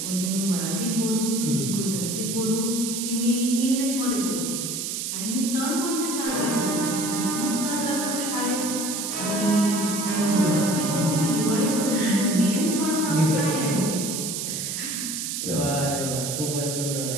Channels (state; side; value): noise; right; hiss, 3 dB below the sound